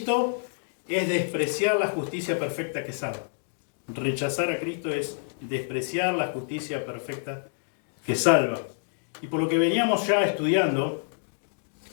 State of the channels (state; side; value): silent; right; digital silence